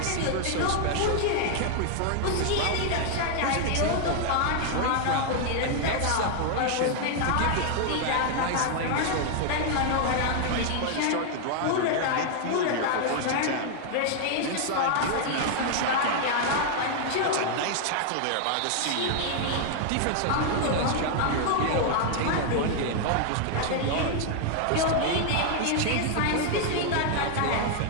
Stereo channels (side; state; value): both; different; correlation 0.00